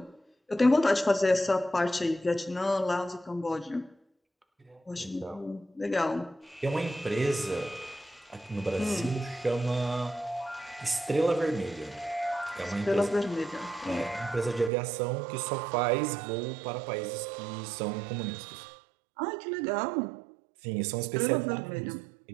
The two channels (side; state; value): left; drops out; at 14.7 s